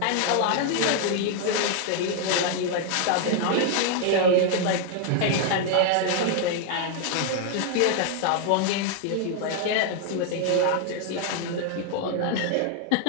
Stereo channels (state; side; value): different; both; correlation 0.00